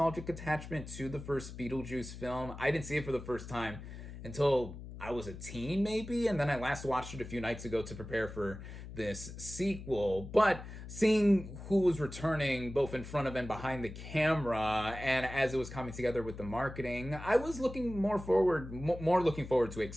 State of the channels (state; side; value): noise; left; hum, 12 dB below the sound